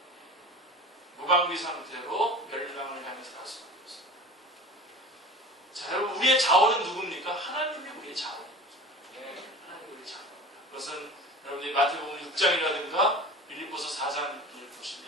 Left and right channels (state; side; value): normal; both; correlation 0.37